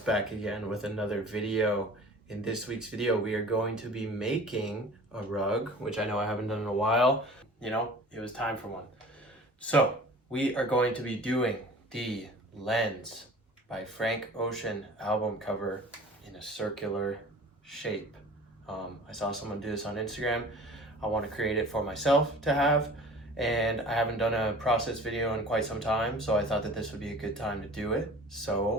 again with another video. In this week's video, we are going to be making a rug, which I know I haven't done in a while. You know, it was time for one. So we are going to be doing the Lens by Frank Ocean album cover in a circular shape. I saw someone do this on Instagram. I want to create it for myself to have. And I haven't done a process video in quite some time, so I thought that this would be a good time to do it.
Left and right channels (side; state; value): both; normal; correlation 0.43